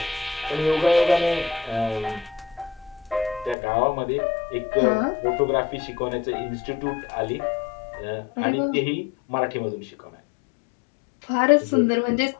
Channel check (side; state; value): right; drops out; at 3.6 s